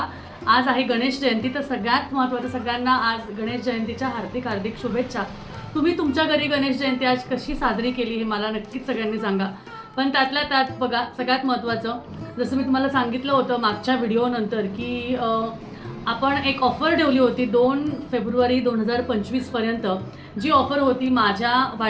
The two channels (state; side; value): identical; both; correlation 1.00